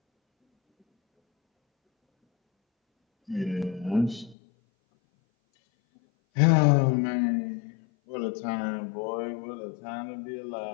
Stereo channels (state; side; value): drops out; right; at 4.4 s